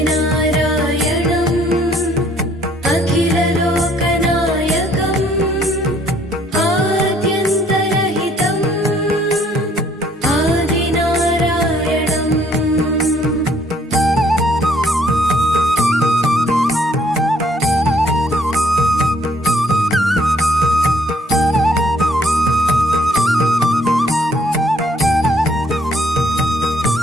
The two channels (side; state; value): both; normal; correlation 0.64